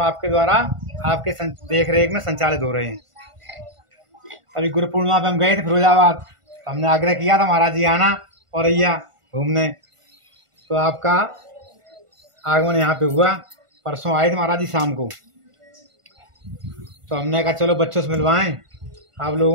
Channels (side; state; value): left; late; 1.5 ms